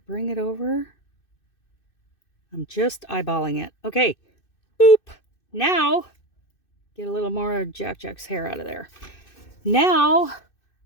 bring it over. I'm just eyeballing it. Okay. Boop. Now, get a little more Jack's hair out of there. Now,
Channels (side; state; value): right; late; 2.6 ms